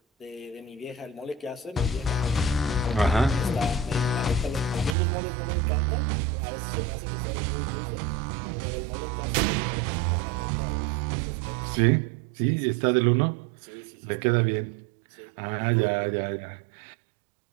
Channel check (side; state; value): left; drops out; at 5.0 s